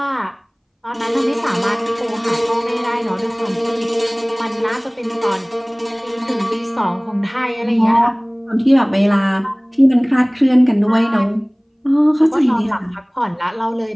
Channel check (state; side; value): identical; both; correlation 1.00